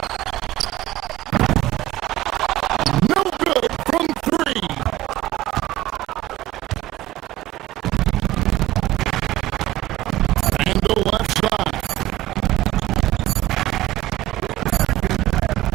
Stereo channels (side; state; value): left; quieter; 15.8 dB